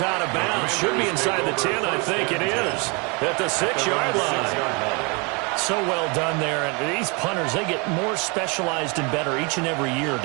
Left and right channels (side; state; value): left; quieter; 31.0 dB